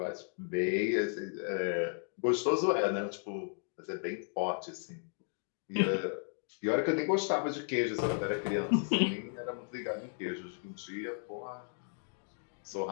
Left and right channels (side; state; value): right; silent; 55 dB below the other